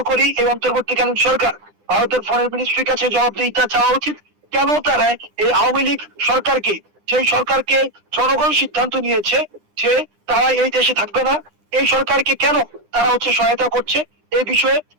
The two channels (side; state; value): left; late; 9.9 ms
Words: করি এই অন্তর্বর্তীকালীন সরকার ভারতের ফরেন মিনিস্ট্রির কাছে জবাবদিহিতা চাওয়া উচিত। কেন তারা এই আওয়ামী লীগ সরকারকে, সেই সরকারকে জনগণ সিদ্ধান্ত নিয়েছে যে তারা এই দেশে থাকবে না, এই সরকারকে কেন তারা হচ্ছে সহায়তা করছে, এই বিষয়ে